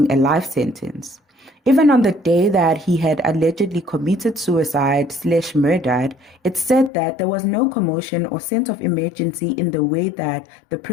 a life sentence. Even on the day that he had allegedly committed suicide/murdered, it said that there was no commotion or sense of emergency in the way that the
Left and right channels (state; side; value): drops out; right; at 6.9 s